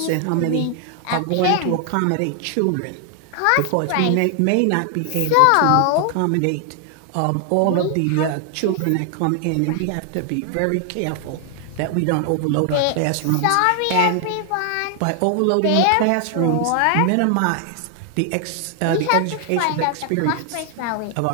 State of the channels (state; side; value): different; both; correlation 0.00